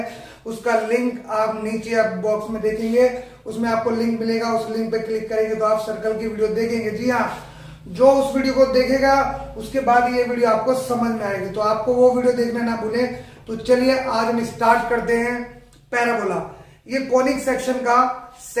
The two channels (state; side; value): identical; both; correlation 1.00